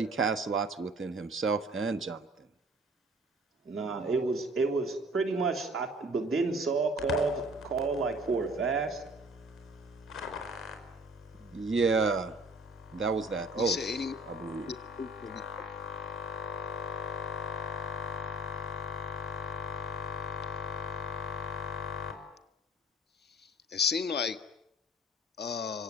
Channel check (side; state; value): both; normal; correlation 0.50